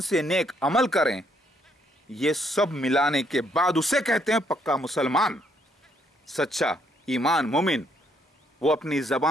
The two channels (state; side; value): normal; both; correlation 0.71